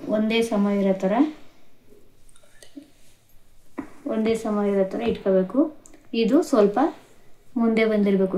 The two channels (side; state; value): both; identical; correlation 1.00